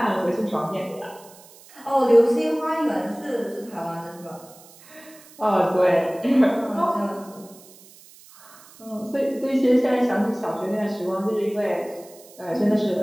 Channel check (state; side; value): noise; right; hiss, 23 dB below the sound